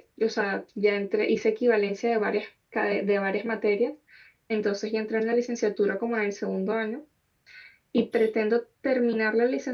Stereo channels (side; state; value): both; identical; correlation 1.00